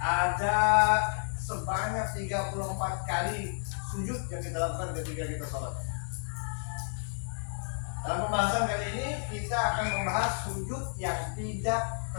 Ada sebanyak 34 kali sujud yang kita lakukan ketika kita sholat. Dalam pembahasan kali ini kita akan membahas sujud yang tidak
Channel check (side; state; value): right; silent; digital silence